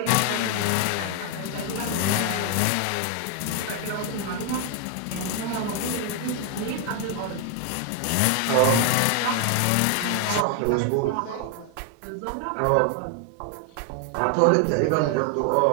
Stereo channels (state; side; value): different; both; correlation 0.01